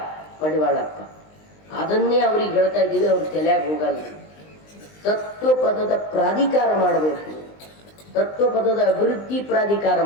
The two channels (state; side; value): late; right; 19 ms